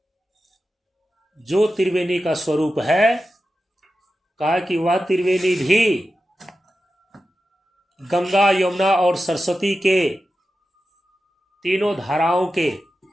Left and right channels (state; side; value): normal; both; correlation 0.92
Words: जो त्रिवेणी का स्वरूप है, कहा कि वह त्रिवेणी भी गंगा, यमुना और सरस्वती के तीनों धाराओं के